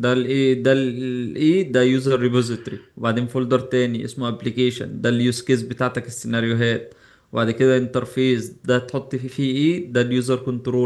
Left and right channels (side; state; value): both; identical; correlation 1.00